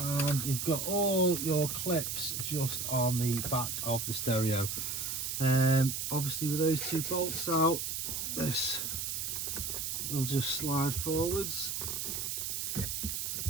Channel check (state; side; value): noise; right; hiss, 2 dB below the sound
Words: you've got all your clips just on the back of the stereo. Obviously with those 2 bolts out, this will just slide forwards.